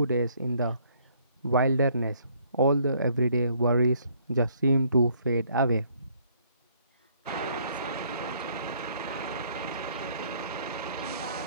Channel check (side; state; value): both; inverted; correlation -0.65